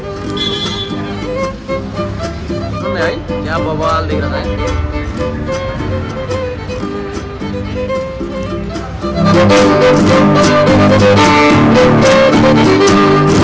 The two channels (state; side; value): identical; both; correlation 1.00